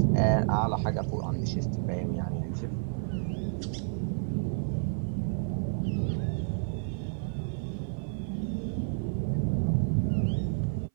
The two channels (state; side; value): silent; left; 55 dB below the other